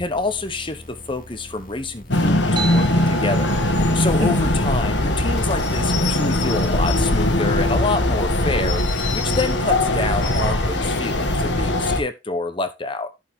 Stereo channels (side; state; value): both; normal; correlation 0.47